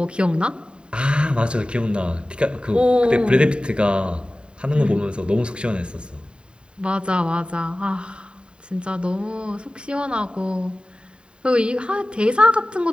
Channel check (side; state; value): left; late; 0.052 ms